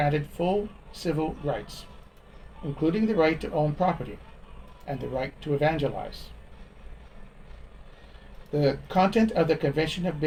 full civil rights, including the right to own property and the right to evangelize. The content of the Convention of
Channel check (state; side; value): identical; both; correlation 1.00